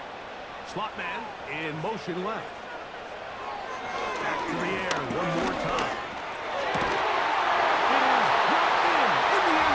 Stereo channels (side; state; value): both; identical; correlation 1.00